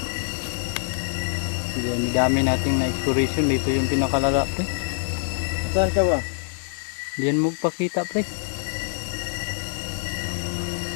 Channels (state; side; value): silent; right; digital silence